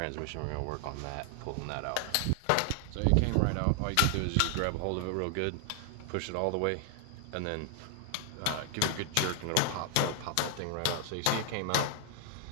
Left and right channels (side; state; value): both; different; correlation 0.00